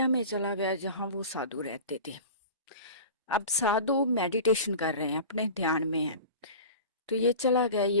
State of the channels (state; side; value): inverted; both; correlation -0.35